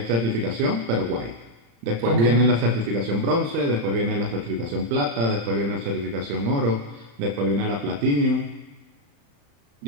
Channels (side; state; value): left; late; 35 ms